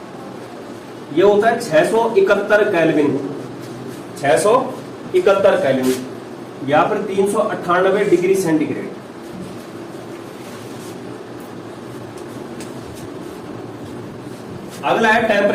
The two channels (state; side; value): identical; both; correlation 1.00